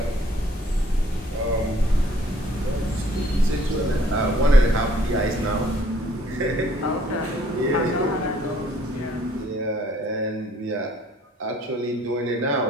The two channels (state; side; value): normal; both; correlation 0.61